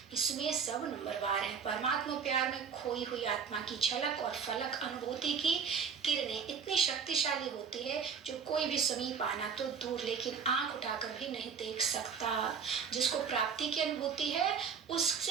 इसमें सब नंबरवार है। परमात्मा प्यार में खोई हुई आत्मा की झलक और फलक अनुभूति की किरणें इतनी शक्तिशाली होती है जो कोई भी समीप आना तो दूर, लेकिन आंख उठाकर भी नहीं देख सकता। जिसको प्राप्ति की अनुभूति है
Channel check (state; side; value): quieter; left; 6.4 dB